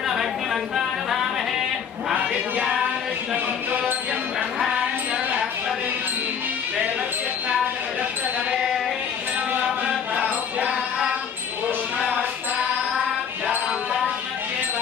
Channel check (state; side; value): quieter; right; 7.4 dB